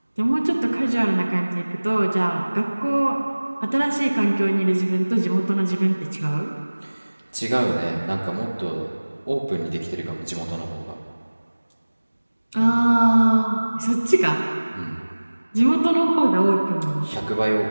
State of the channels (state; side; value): inverted; both; correlation -1.00